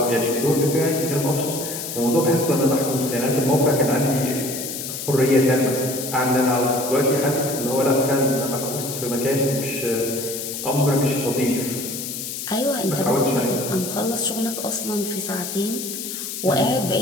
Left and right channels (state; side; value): noise; left; hiss, 6 dB below the sound